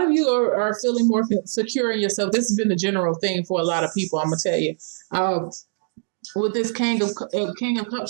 you are feeling more secure in yourself. This has been the general thing for a lot of people. I'm gonna tell you. With this King of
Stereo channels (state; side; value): silent; left; digital silence